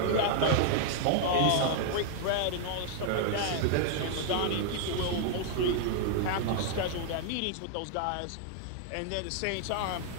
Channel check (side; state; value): both; different; correlation -0.01